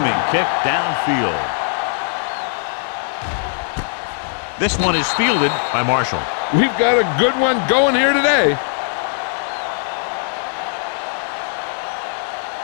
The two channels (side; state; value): right; silent; 63 dB below the other